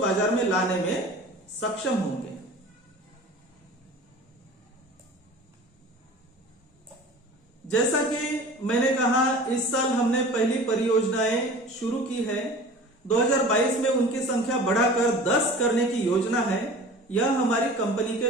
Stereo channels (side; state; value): both; normal; correlation 0.41